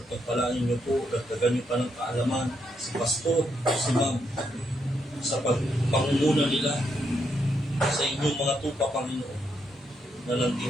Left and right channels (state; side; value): normal; both; correlation 0.78